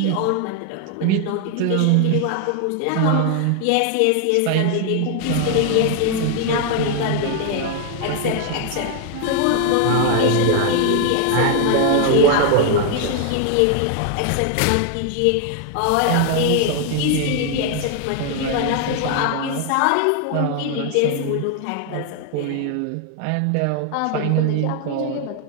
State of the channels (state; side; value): different; both; correlation 0.00